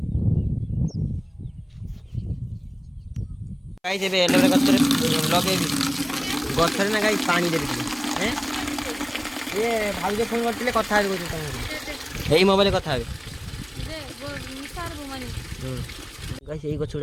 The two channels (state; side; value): identical; both; correlation 1.00